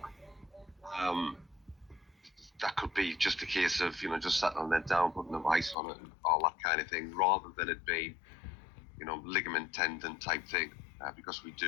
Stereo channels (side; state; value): right; drops out; at 5.8 s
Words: That could be just a case of, just settling it down, putting some ice on it, and all that kind of thing, rather than it being, ligament tendon type thing. Because we